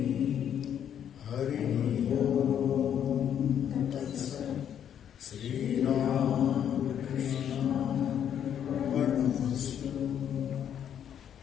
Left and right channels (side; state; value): right; quieter; 9.3 dB